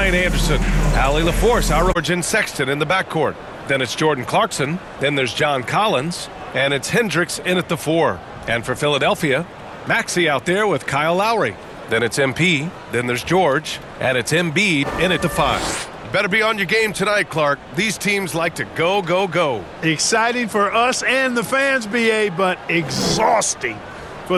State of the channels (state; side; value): identical; both; correlation 1.00